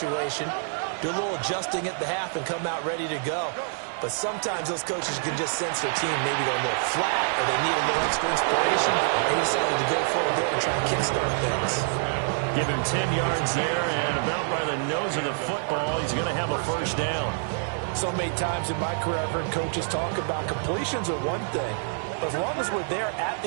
Do a little adjusting at the half and come out ready to go. But sometimes those coaches can just sense their team maybe go a little flat or they need a little extra inspiration. They decided to go for it there and try and kickstart things. Give him 10 yards there, and about by the nose of the football, he's going to have a first down. So many times in my career, I've heard coaches talk about completions are one thing. But as long as we're there at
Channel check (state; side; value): silent; left; digital silence